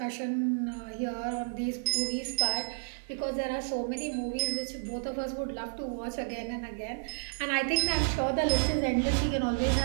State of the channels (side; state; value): left; silent; digital silence